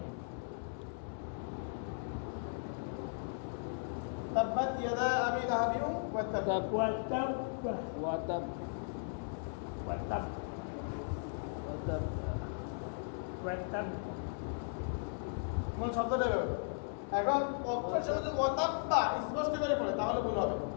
তাব্বাত ইয়াদা আবি লাহাবি ওয়া তাব وتب মূল শব্দটা বেরোবে এখন অক্ষর শেষে যদি ওয়াতাব্বা স্পষ্ট করে পড়ে তাহলে ভুল হবে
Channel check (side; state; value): right; silent; digital silence